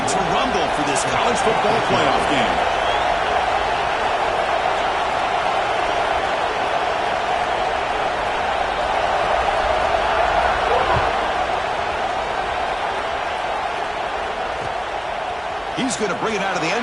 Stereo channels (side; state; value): both; identical; correlation 1.00